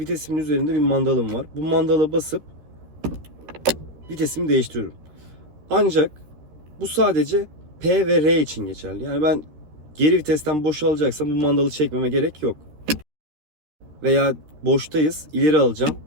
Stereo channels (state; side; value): late; left; 13 ms